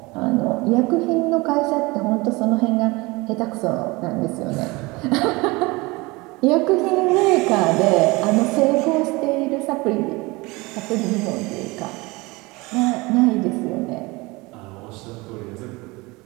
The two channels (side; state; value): left; quieter; 23.7 dB